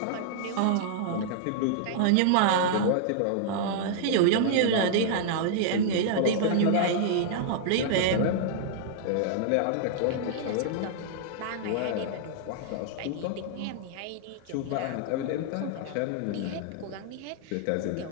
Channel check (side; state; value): both; different; correlation -0.01